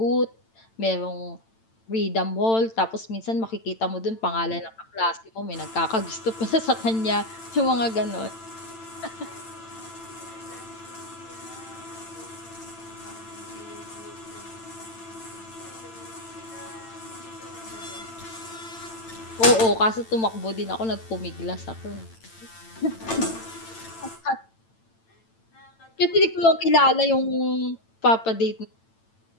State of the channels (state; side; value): late; right; 8.9 ms